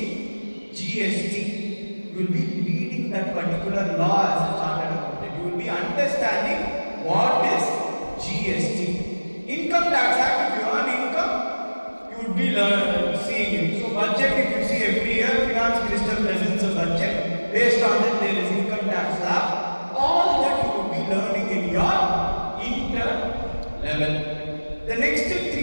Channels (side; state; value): both; inverted; correlation -1.00